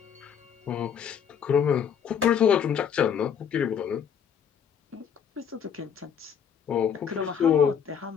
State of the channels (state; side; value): quieter; right; 7.8 dB